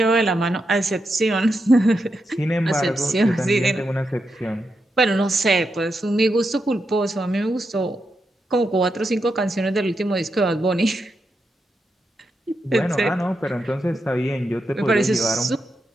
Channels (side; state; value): both; normal; correlation 0.85